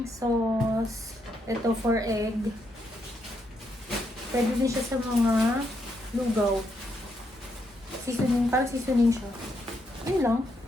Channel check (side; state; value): both; normal; correlation 0.78